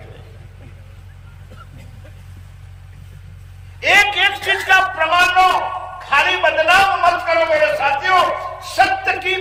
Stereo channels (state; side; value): identical; both; correlation 1.00